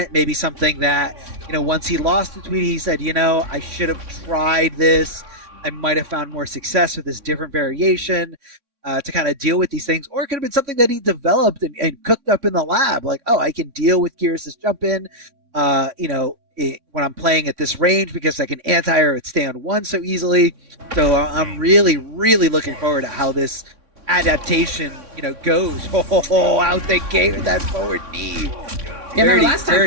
Maybe something that once he lost to Tweedy, he said, I should have tried this. I might have found more success with this different variation. To kind of deal with these things, or it could have been something that he developed and cooked up in the lab. Like, I can deal with Geras' jump in, when I'm playing at this range because I can anti-air it stay on 1 so easily. So I'm really, really looking forward to how this adaptation, goes. Out the gate with that forward knee. Yeah, remember last time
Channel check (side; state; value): left; late; 3.6 ms